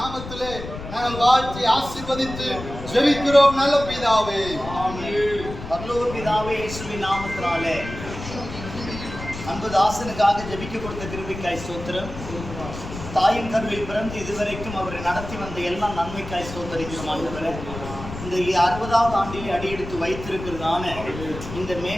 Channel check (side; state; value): left; noise; rumble, 10 dB below the sound